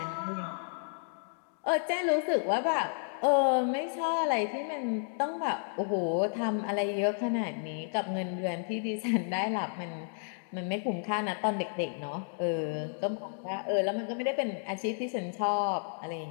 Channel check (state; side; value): silent; right; digital silence